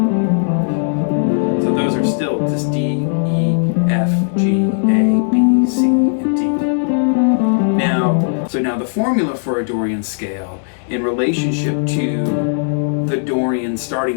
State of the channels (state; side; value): silent; right; digital silence